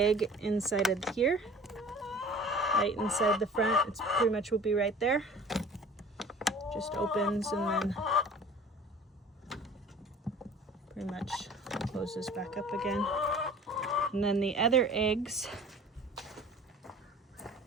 inside of here, right inside the front. It's pretty much will be right there. Just opens and then pretty much closes back up again. And then the other eggs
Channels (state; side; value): normal; both; correlation 0.46